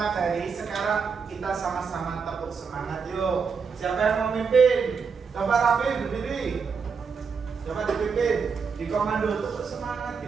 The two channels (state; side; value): quieter; left; 5.7 dB